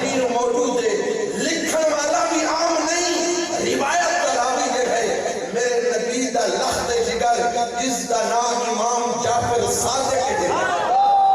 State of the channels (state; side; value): identical; both; correlation 1.00